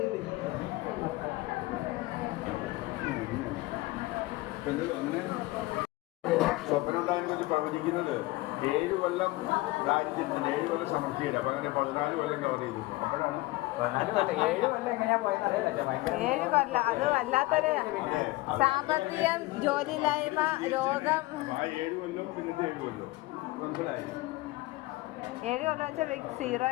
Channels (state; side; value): quieter; right; 20.3 dB